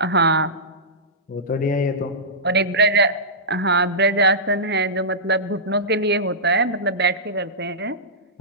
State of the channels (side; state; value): both; normal; correlation -0.16